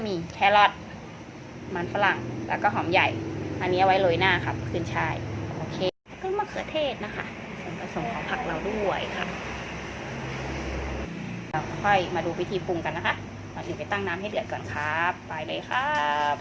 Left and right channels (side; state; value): both; identical; correlation 1.00